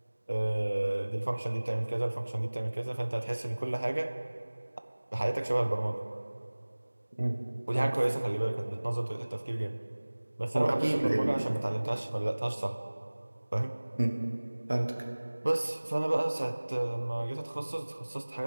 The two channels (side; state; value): both; inverted; correlation -1.00